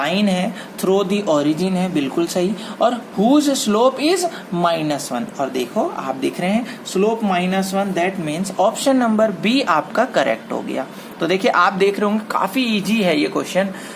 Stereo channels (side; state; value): both; identical; correlation 1.00